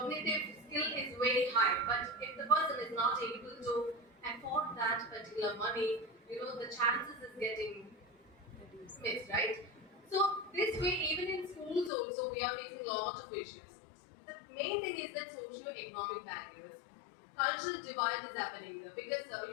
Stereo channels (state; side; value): drops out; right; at 11.9 s